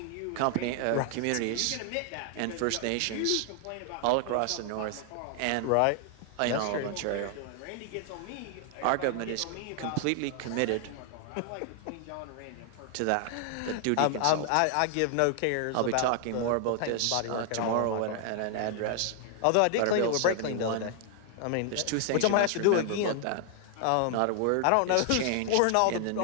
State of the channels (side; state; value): both; different; correlation 0.00